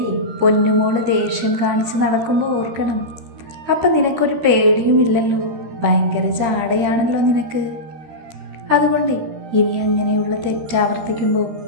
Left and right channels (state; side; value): late; left; 13 ms